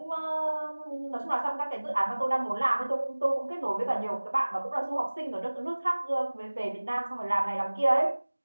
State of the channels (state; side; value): inverted; both; correlation -1.00